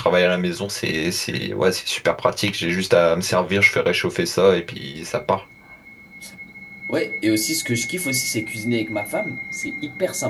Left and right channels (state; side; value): identical; both; correlation 1.00